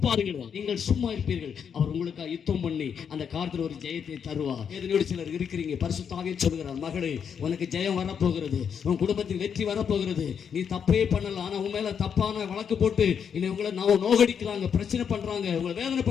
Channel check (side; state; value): right; quieter; 7.4 dB